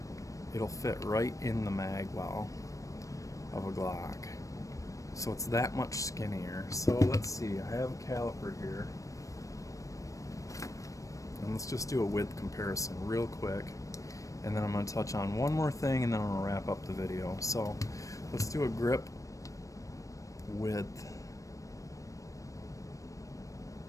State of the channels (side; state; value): right; late; 0.16 ms